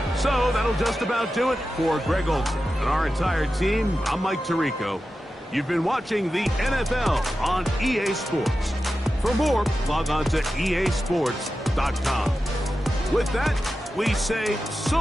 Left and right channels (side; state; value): both; normal; correlation 0.92